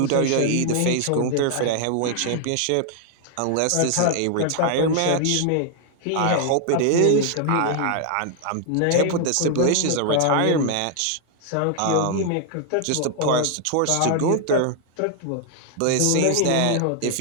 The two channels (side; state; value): both; different; correlation 0.00